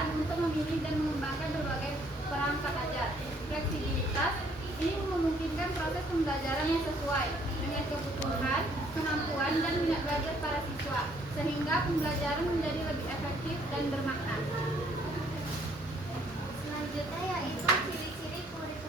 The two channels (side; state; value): both; normal; correlation 0.64